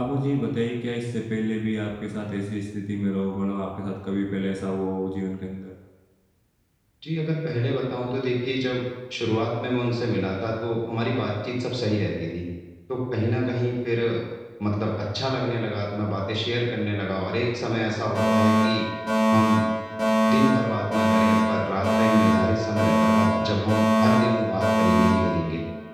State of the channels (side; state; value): both; identical; correlation 1.00